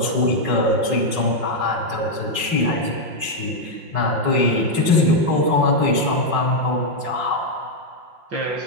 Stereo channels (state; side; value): late; left; 6.2 ms